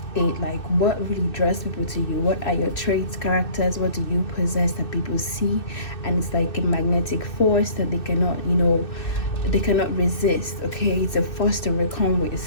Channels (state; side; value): late; right; 2.6 ms